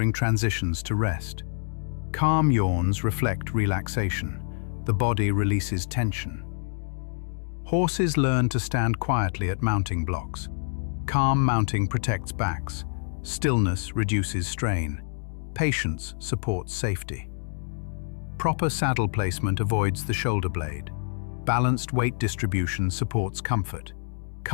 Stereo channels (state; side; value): silent; right; digital silence